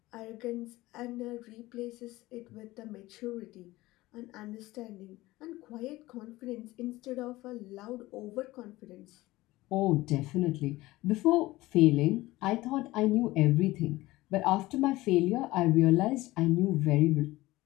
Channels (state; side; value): quieter; right; 18.6 dB